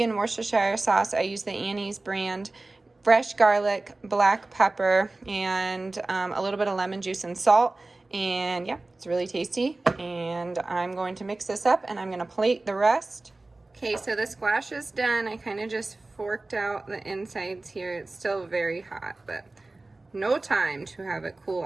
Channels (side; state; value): left; quieter; 3.1 dB